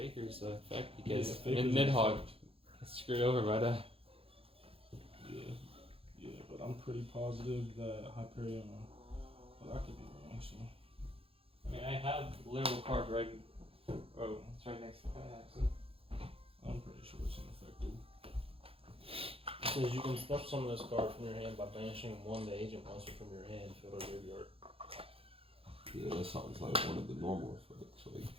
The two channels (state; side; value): late; left; 0.27 ms